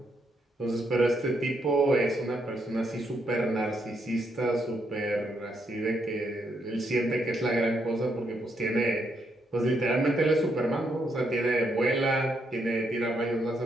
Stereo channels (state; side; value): normal; both; correlation 0.77